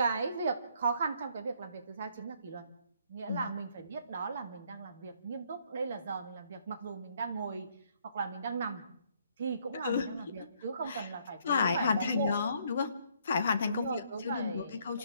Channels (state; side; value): inverted; both; correlation -0.67